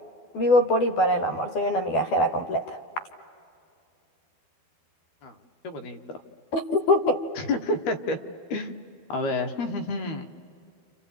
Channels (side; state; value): right; late; 12 ms